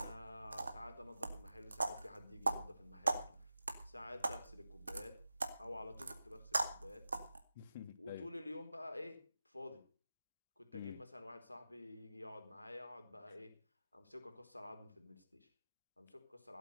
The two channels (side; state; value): both; inverted; correlation -0.92